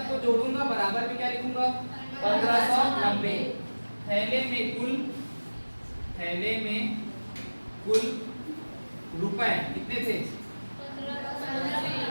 जोड़ूंगा, बराबर में क्या लिखूंगा, 1590। थैले में कुल रुपए कितने थे,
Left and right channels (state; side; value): inverted; both; correlation -1.00